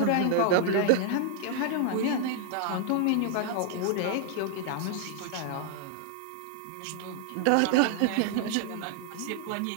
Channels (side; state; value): both; different; correlation 0.00